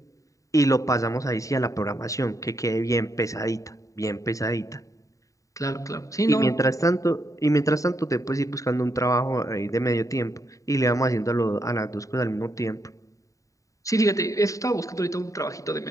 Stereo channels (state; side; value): late; right; 0.16 ms